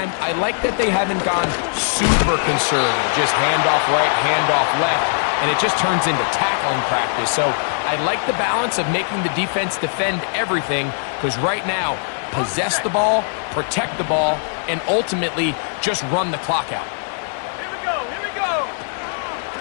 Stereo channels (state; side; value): silent; right; digital silence